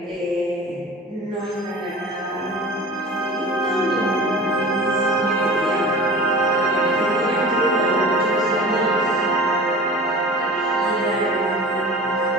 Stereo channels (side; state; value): both; normal; correlation 0.37